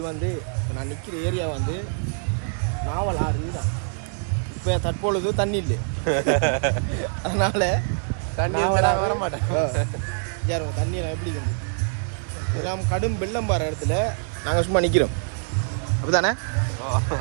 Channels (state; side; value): silent; left; digital silence